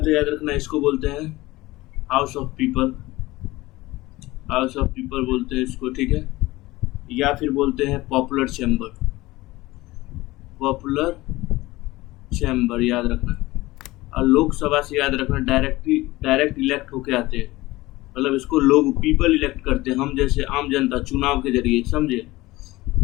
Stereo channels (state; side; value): quieter; right; 19.2 dB